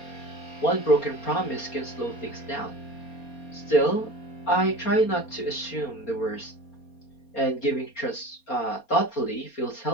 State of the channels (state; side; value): late; right; 4.3 ms